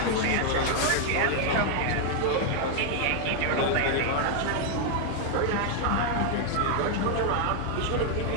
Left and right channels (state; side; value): different; both; correlation 0.00